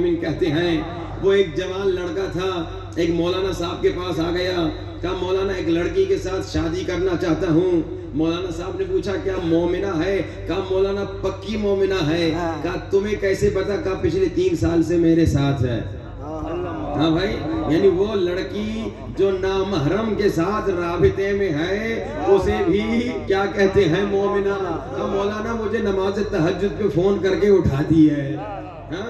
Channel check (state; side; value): identical; both; correlation 1.00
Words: کہتے ہیں. وہ ایک جوان لڑکا تھا, ایک مولانا صاحب کے پاس آ گیا, کہا مولانا ایک لڑکی کے ساتھ شادی کرنا چاہتا ہوں. مولانا صاحب نے پوچھا کیا مومنہ ہے؟ کہا مولانا پکی مومنہ ہے. کہا تمہیں کیسے پتا؟ کہا پچھلے 3 سال سے میرے ساتھ ہے. ہاں بھائی, یعنی وہ لڑکی جو نامحرم کے ساتھ رابطے میں ہے اسے بھی کیا کہتے ہیں؟ مومنہ. مولانا مجھے نماز تہجد پہ فون کر کے اٹھا دی ہے.